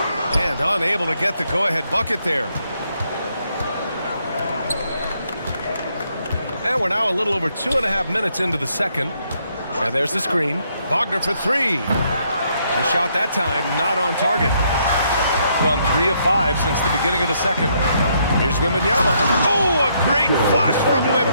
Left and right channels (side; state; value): both; inverted; correlation -0.73